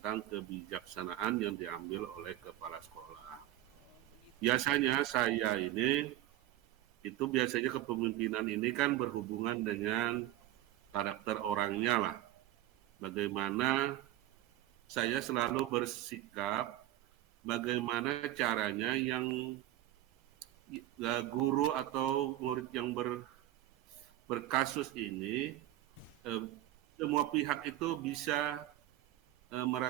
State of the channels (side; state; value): left; quieter; 14.7 dB